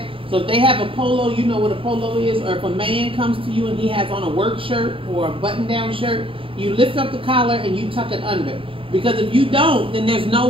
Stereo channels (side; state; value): left; late; 0.26 ms